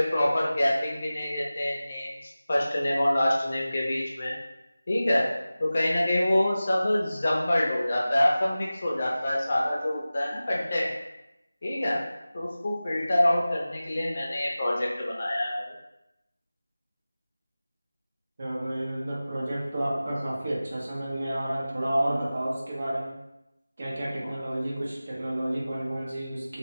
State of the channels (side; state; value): both; inverted; correlation -0.97